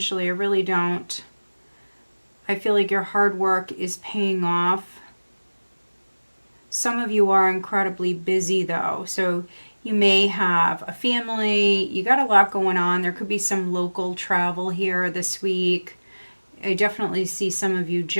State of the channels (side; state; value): both; inverted; correlation -1.00